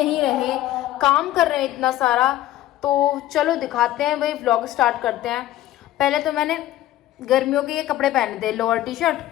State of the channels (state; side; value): quieter; right; 14.1 dB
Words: रहे, काम कर रहे हैं इतना सारा, तो चलो दिखाते हैं भाई, व्लॉग स्टार्ट करते हैं। पहले तो मैंने गर्मियों के ये कपड़े पहने थे, लोअर टी शर्ट।